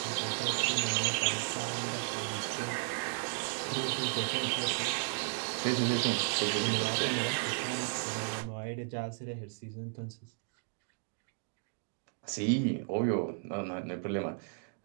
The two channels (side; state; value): left; silent; 55 dB below the other